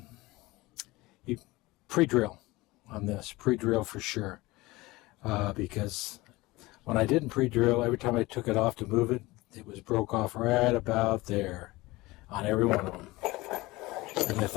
you pre-drill on this, pre-drill for sure. Because when I didn't pre-drill, every time I took it off to move it, it was broke off right about there on every one of them. And I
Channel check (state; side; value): quieter; right; 20.8 dB